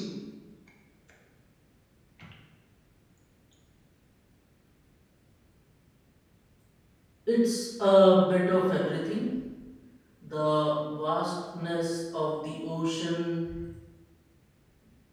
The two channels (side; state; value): both; identical; correlation 1.00